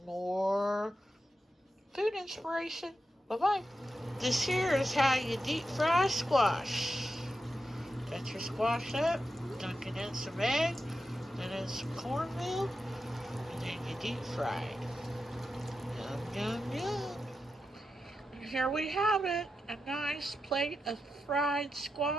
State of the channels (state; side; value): normal; both; correlation 0.89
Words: more food inspiration. Bye-bye. This here is how you deep fry squash. Got your squash up, dunk it in some egg, then in some cornmeal, and then you deep fry it. Yum, yum, yum. And here we have it, a nice plate of fried